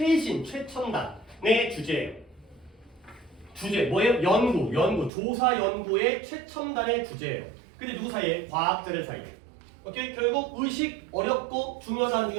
주제예요. 주제 뭐예요? 연구, 조사 연구의 최첨단의 주제예요. 근데 누구 사이에? 과학자들 사이에. 오케이? 결국 의식 어렵고 중요하다 안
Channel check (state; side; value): drops out; left; at 5.1 s